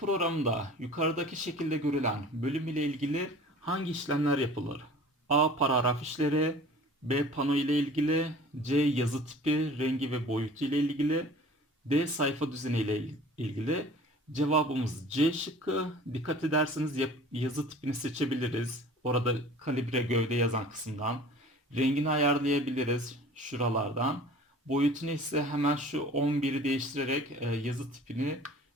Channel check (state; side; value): normal; both; correlation 0.45